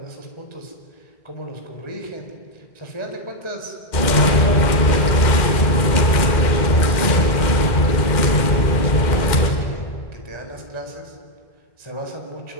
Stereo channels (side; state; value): right; late; 2.1 ms